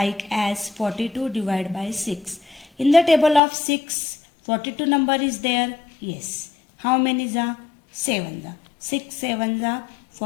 as 42 divided by 6. In the table of 6, 42 number is there? Yes. How many is 7? 6 7 are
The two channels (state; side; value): drops out; right; at 3.4 s